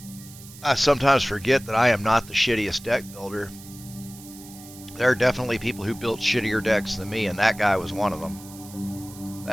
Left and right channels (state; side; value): noise; right; hiss, 18 dB below the sound